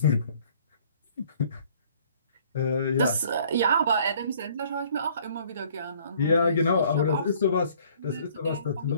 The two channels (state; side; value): inverted; both; correlation -0.57